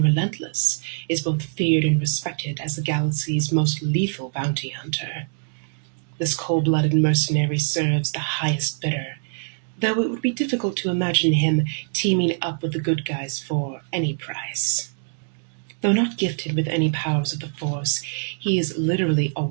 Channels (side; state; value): left; silent; digital silence